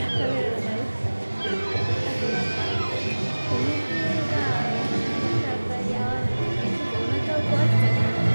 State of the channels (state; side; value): inverted; both; correlation -1.00